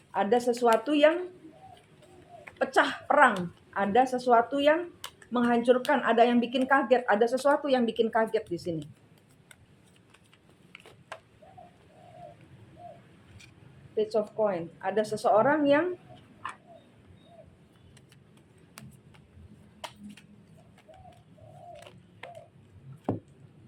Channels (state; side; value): identical; both; correlation 1.00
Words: Ada sesuatu yang pecah perang. Ada sesuatu yang menghancurkan. Ada yang bikin kaget. Ada sesuatu yang bikin kaget di sini. Page of Coin. Ada seseorang yang